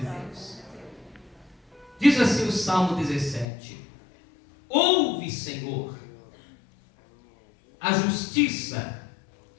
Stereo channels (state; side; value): drops out; right; at 3.5 s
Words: Diz assim o Salmo 17: ouve, Senhor, a justiça